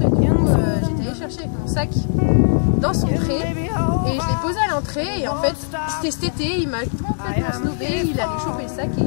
et du coup j'étais allée chercher avec mon sac dans son pré et je l'ai posé à l'entrée et en fait c'était cet été, il m'a complètement snobé, il allait choper le sac et il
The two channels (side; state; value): right; silent; digital silence